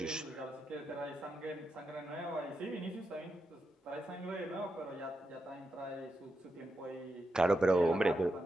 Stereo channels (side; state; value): both; normal; correlation 0.86